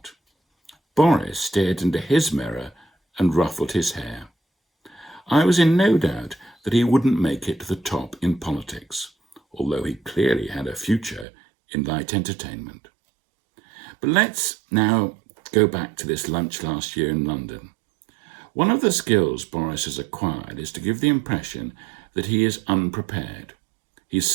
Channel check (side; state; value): left; drops out; at 11.2 s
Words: Boris stared into his mirror and ruffled his hair. I was in no doubt that he wouldn't make it to the top in politics, although he clearly had a future in light entertainment. But let's now go back to this lunch last year in London. One of the skills Boris has acquired is to give the impression that he is unprepared. He